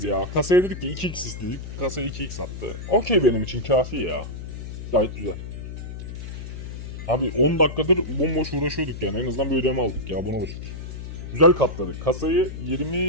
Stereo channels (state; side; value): noise; left; hum, 9 dB below the sound